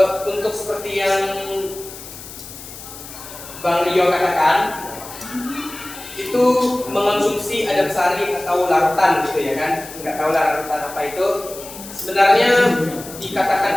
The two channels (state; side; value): noise; left; hiss, 14 dB below the sound